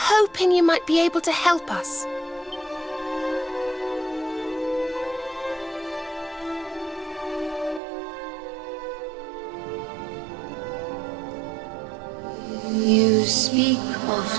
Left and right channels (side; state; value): left; drops out; at 7.8 s